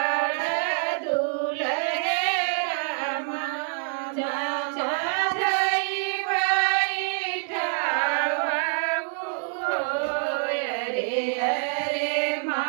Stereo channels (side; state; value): left; silent; digital silence